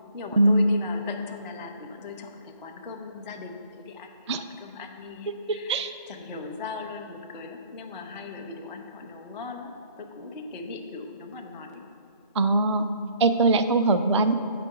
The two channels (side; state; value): both; inverted; correlation -0.57